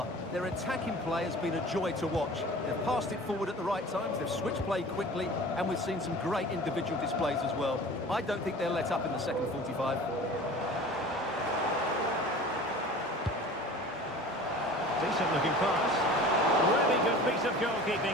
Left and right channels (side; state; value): both; normal; correlation 0.41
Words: Their attacking play has been a joy to watch. They've passed it forward at the right times, they've switched play quickly, and we've seen some great individual displays as well. I don't think they'll let up in the second 45. Decent-looking pass. Really good piece of